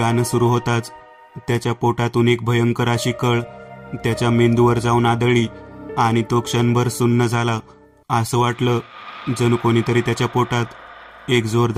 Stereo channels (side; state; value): both; identical; correlation 1.00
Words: सुरू होताच त्याच्या पोटातून एक भयंकर अशी कळ त्याच्या मेंदूवर जाऊन आदळली आणि तो क्षणभर सुन्न झाला. असं वाटलं जणू कोणीतरी त्याच्या पोटात एक